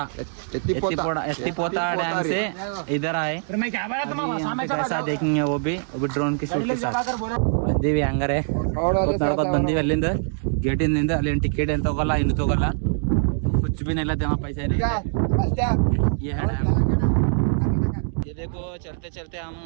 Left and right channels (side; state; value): left; silent; digital silence